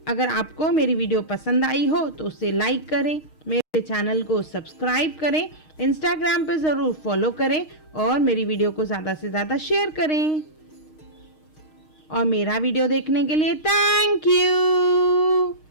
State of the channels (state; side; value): late; right; 6.4 ms